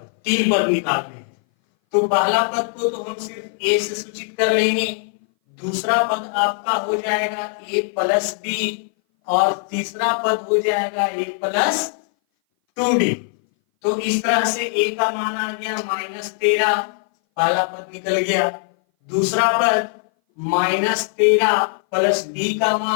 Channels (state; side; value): silent; right; 59 dB below the other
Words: 3 पद निकालने हैं। तो पहला पद को तो हम सिर्फ ए से सूचित कर लेंगे, दूसरा पद आपका हो जाएगा ए प्लस बी और तीसरा पद हो जाएगा ए प्लस 2d। तो इस तरह से ए का मान आ गया -13, पहला पद निकल गया। दूसरा पद -13 प्लस डी का